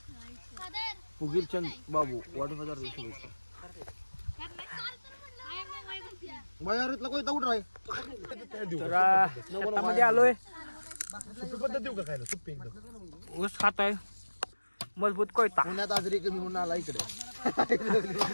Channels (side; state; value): both; inverted; correlation -1.00